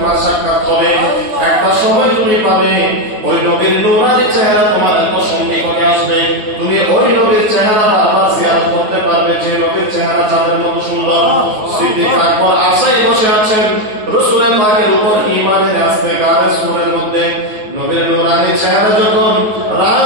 সাক্ষাৎ হবে। একটা সময় তুমি পাবে ওই নবীর নূরানি চেহারা তোমার এত সন্নিকটে আসবে, তুমি ওই নবীর চেহারা বারবার জিয়ারত করতে পারবে, যে নবীর চেহারা চাঁদের মতো সুন্দর। সিদ্দিক আকবর আশায় বসে আছেন, রাসূলের পাকের উপর ঈমান এনে আসতে গায়ে সুরের মধ্যে নবীর নূরানি চেহারা যখন রাজ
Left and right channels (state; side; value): late; left; 9.4 ms